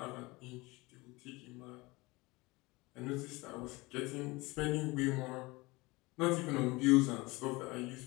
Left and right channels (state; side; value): quieter; right; 23.1 dB